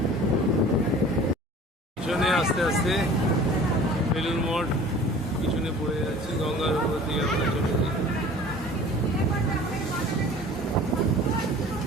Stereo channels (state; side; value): normal; both; correlation 0.45